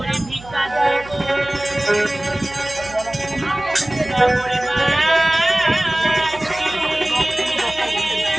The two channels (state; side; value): noise; right; hum, 18 dB below the sound